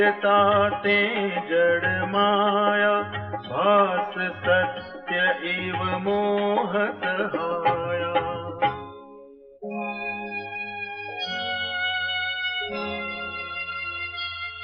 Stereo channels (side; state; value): both; identical; correlation 1.00